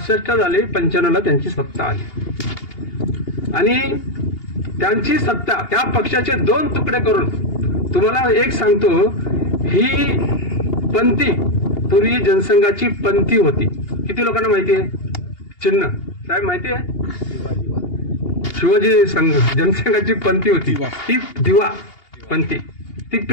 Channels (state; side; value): late; right; 2.8 ms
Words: झाली, 95ला त्यांची सत्ता आली. आणि त्यांची सत्ता त्या पक्षाचे 2 तुकडे करून, तुम्हाला एक सांगतो, ही पंथी पूर्वी जनसंघाची पंथी होती. किती लोकांना माहिती आहे? चिन्ह साहेब माहिती आहे? शिवाजी संघ जनसंघाची पंथी होती. ती दिवा पंथी, ती